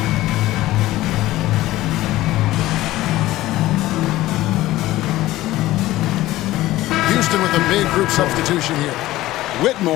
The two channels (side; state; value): right; quieter; 16.4 dB